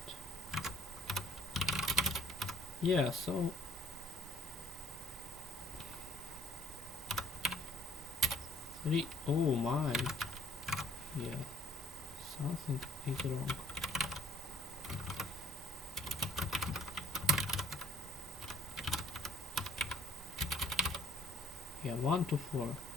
Yeah, so three. Oh my. Yeah. Something is wrong. Yeah, 1 to 4.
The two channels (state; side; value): normal; both; correlation 0.59